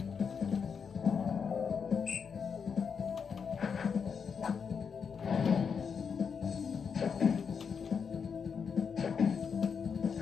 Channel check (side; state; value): right; quieter; 6.3 dB